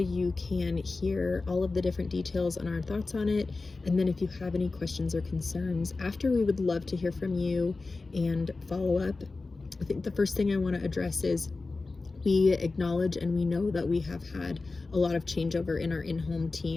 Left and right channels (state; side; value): quieter; right; 3.7 dB